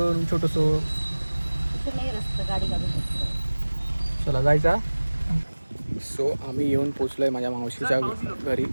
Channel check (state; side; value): inverted; both; correlation -1.00